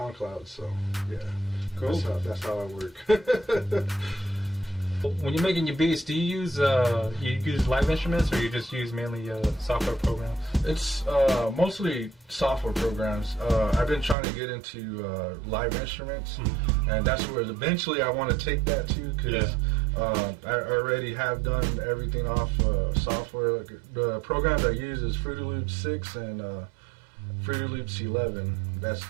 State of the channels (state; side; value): drops out; left; at 14.2 s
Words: So yeah, cool. That's how I work. When you're making your beats, do you use live instruments, or you just use mainly software programs? It's mostly software programs. I've been trying to get into live instruments, and that's where eventually I want to take that to, because I already have done everything off software. The programs I use is Fruity Loops 6 and Fruity Loops 11. That's